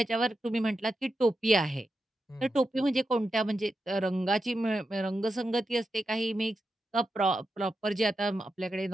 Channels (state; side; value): normal; both; correlation 0.88